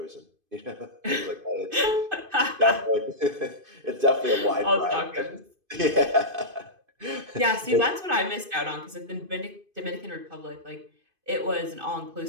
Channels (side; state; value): left; late; 2.5 ms